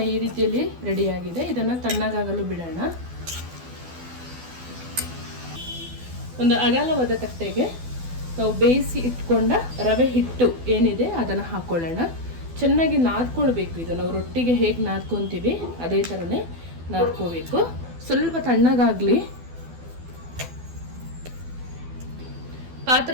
ಈ ರೀತಿಯಲ್ಲಿ ರೆಡಿಯಾಗಿದೆ. ಇದನ್ನು ತಣ್ಣಗಾಗಲು ಬಿಡೋಣ. ಒಂದು ಅಗಲವಾದ ತಟ್ಟೆಗೆ ನಾವು ಬೇಯಿಸಿ ಇಟ್ಕೊಂಡ ರವೆ ಹಿಟ್ಟು ಏನಿದೆ ಅದನ್ನು ಹಾಕ್ಕೊಳ್ಳೋಣ. ಚೆನ್ನಾಗಿ ನಾದ್ಕೊಳ್ಬೇಕು. ಇದು ನಾವು ರೊಟ್ಟಿಗೆ ಹೇಗೆ ನಾದ್ಕೊತೀವಿ ಅದೇ ಥರನೇ ನಾದ್ಕೋಬೇಕು. ಸ್ವಲ್ಪ ತಣ್ಣಗಾಗಲಿ.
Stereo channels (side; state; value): left; late; 12 ms